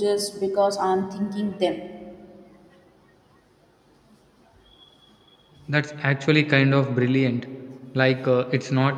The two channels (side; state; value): both; identical; correlation 1.00